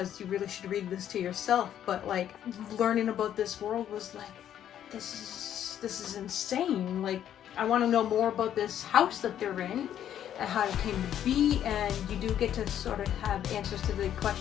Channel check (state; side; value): quieter; right; 10.4 dB